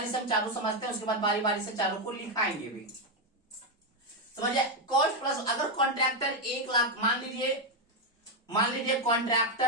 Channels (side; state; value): both; normal; correlation 0.05